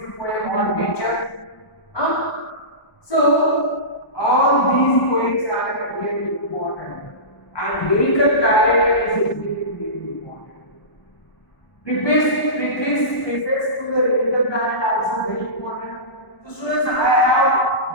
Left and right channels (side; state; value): right; late; 1.0 ms